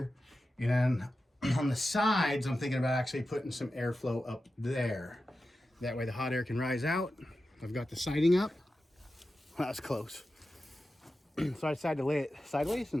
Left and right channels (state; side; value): normal; both; correlation 0.92